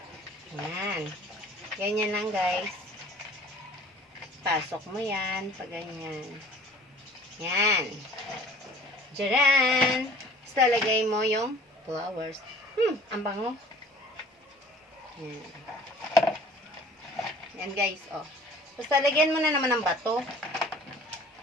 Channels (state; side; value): normal; both; correlation 0.50